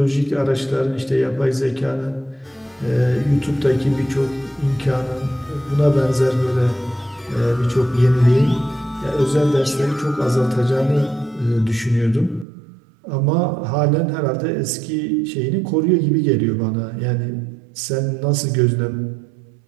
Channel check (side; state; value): left; drops out; at 12.5 s